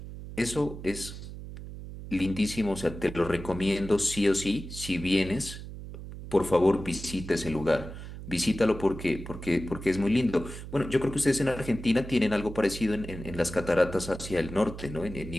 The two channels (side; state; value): right; noise; hum, 11 dB below the sound